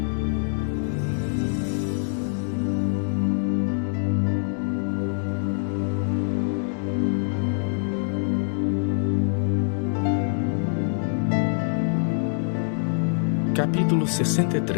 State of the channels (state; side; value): silent; right; 62 dB below the other